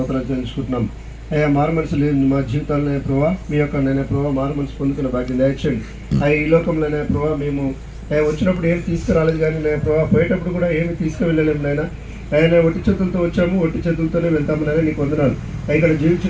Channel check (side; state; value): both; identical; correlation 1.00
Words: చెల్లించుకుంటున్నాం. అయ్యా మారు మనసు లేదు మా జీవితాలనే ప్రభావ, మీ యొక్క నైనా ప్రభావ మారు మనసు పొందుకున్న భాగ్యం దయచేయండి. అయ్యా ఈ లోకంలోనే ప్రభావ మేము వచ్చినప్పుడు ఏమి తీసుకురాలేదు, కానీ నేను ప్రభావ పోయేటప్పుడు కూడా ఏమి తీసుకువెళ్ళలేము నాయన. ఆయన ఒట్టి చేతులతో వచ్చాము, ఒట్టి చేతులతోనే వెళ్తాము నాయన, నీకు వందనాలు. ఇక్కడ